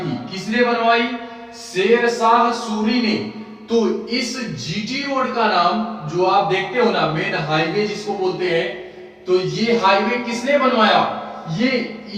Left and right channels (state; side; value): identical; both; correlation 1.00